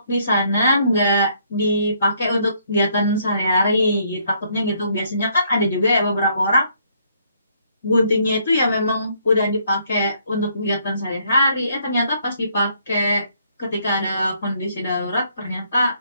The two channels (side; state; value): both; inverted; correlation -0.68